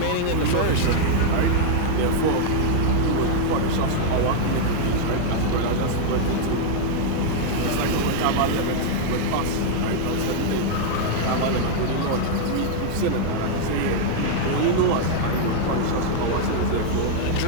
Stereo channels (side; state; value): both; different; correlation 0.00